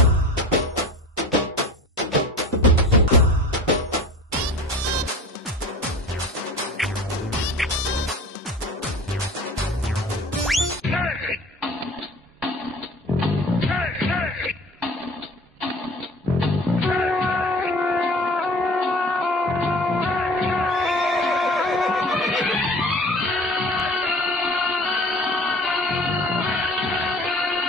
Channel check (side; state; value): both; normal; correlation 0.42